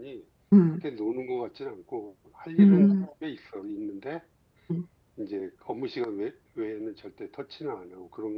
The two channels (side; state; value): both; identical; correlation 1.00